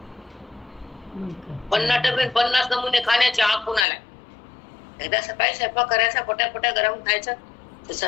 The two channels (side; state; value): right; drops out; at 3.9 s